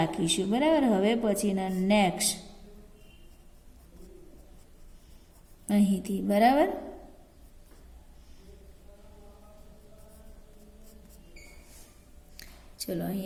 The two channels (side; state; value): both; identical; correlation 1.00